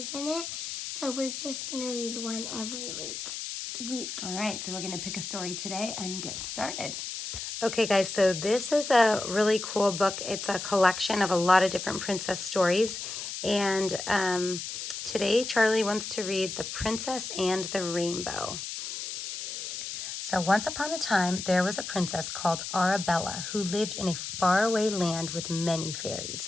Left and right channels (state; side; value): noise; left; hiss, 6 dB below the sound